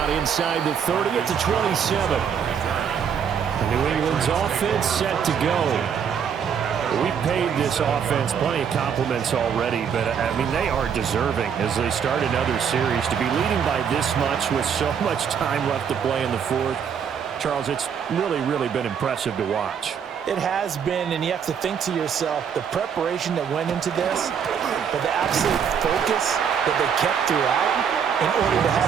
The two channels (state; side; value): quieter; left; 7.5 dB